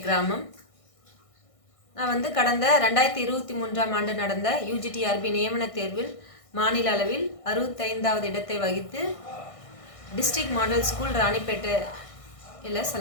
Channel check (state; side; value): late; right; 1.6 ms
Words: கிராமம். நான் கடந்த 2023ஆம் ஆண்டு நடந்த UGTRB நியமன தேர்வில் மாநில அளவில் 65வது இடத்தை வகித்து டிஸ்ட்ரிக்ட் மாடல் ஸ்கூல் ராணிப்பேட்டையில்